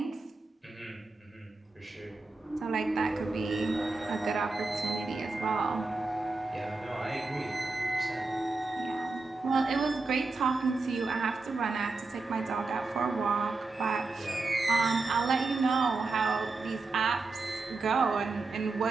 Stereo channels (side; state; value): left; quieter; 3.7 dB